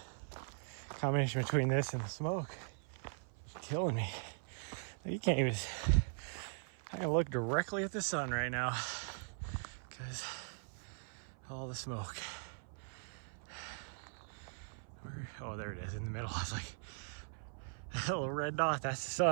Combination between this and the smoke is killing me. You can't even, I can look directly at the sun right now because all the smoke. Oh, there it is in the middle. I was like, that little red dot, that's the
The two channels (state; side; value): silent; left; 51 dB below the other